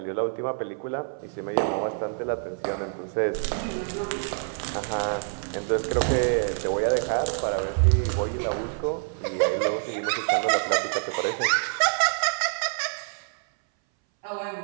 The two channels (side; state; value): left; silent; 60 dB below the other